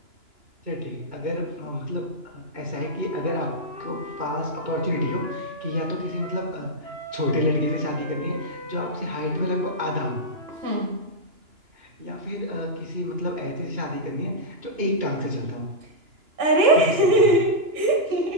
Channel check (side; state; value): left; late; 2.9 ms